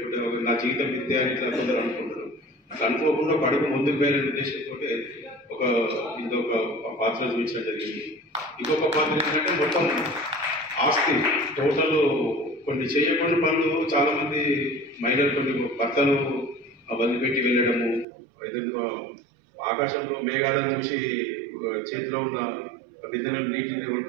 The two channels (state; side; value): drops out; left; at 18.1 s